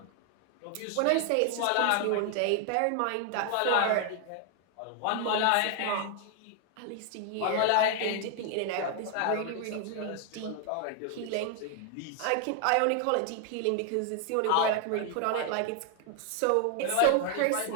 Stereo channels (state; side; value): different; both; correlation 0.00